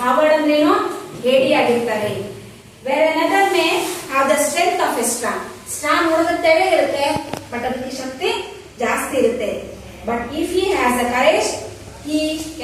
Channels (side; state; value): both; identical; correlation 1.00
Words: ಕಾವರ್ಡ್ ಅಂದ್ರೇನು? ಹೇಡಿ ಆಗಿರ್ತಾರೆ. Where another may have the strength of a straw. Straw ನೋಡೋದಕ್ಕೆ ತೆಳೆ ಇರುತ್ತೆ, ಬಟ್ ಅದಕ್ಕೆ ಶಕ್ತಿ ಜಾಸ್ತಿ ಇರುತ್ತೆ. But if he has a courage, he